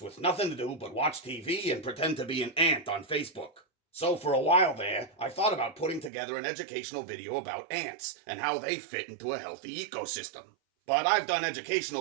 nothing to do but watch TV and pretend to be an ant on Facebook. So for a while there, I thought about putting together an educational video about ants and how they fit into a healthy ecosystem. But I've done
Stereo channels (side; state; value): left; drops out; at 6.1 s